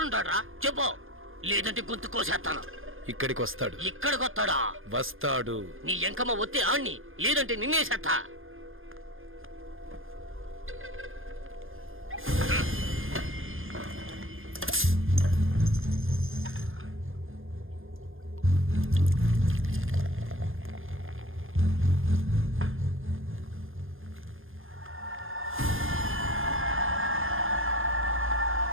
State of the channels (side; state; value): left; late; 0.59 ms